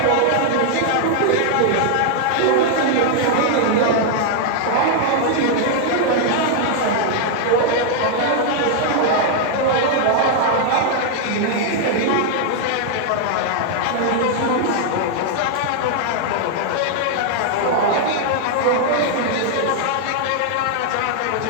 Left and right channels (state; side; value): different; both; correlation 0.00